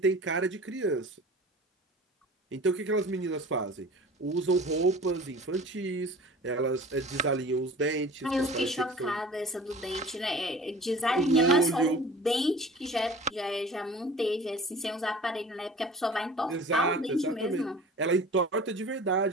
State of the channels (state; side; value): normal; both; correlation 0.42